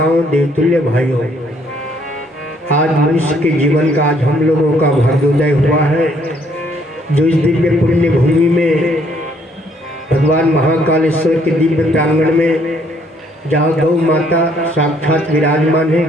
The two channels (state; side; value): normal; both; correlation 0.66